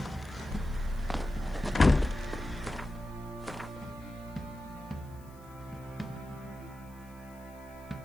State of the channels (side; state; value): left; noise; hiss, 26 dB below the sound